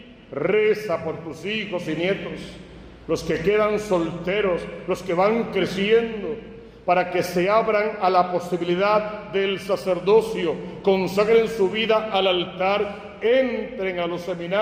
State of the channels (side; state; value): both; identical; correlation 1.00